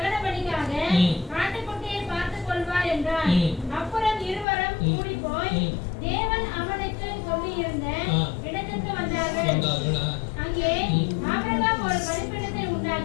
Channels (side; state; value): right; drops out; at 4.5 s